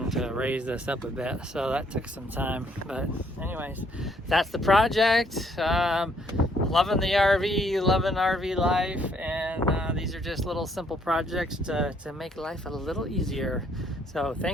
to raise this up a bit. So that took some time. But anyways, that's the project. Loving the RV, loving RV life, and these are just little simple projects to make life a little easier. So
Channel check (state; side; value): normal; both; correlation 0.67